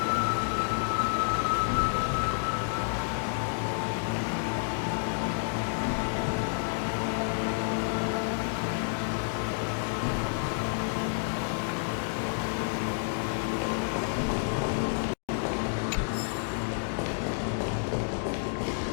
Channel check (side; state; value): right; silent; digital silence